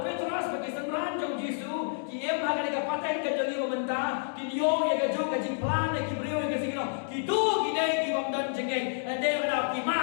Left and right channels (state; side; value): silent; right; digital silence